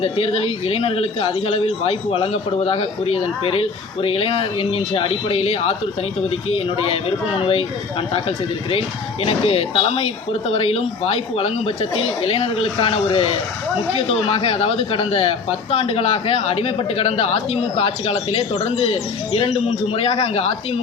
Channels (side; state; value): right; quieter; 4.7 dB